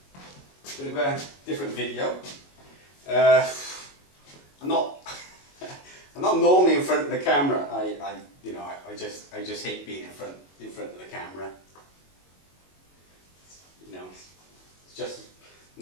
Bit of a different video. I'm not normally in front of the camera. I just hate being in front of the camera. You know, it's just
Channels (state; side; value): late; right; 22 ms